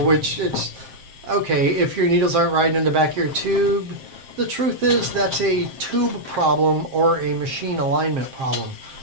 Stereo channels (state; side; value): late; left; 7.5 ms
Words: it's, okay, if your needles aren't riding in the back of your tube, the truth is that's a tube problem or a machine alignment problem.